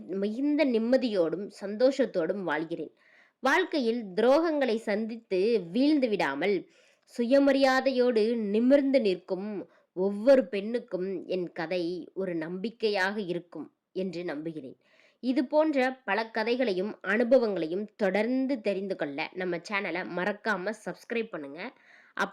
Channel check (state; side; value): identical; both; correlation 1.00